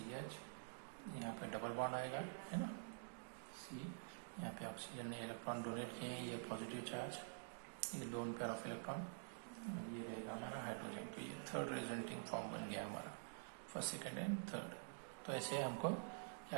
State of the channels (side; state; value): left; silent; digital silence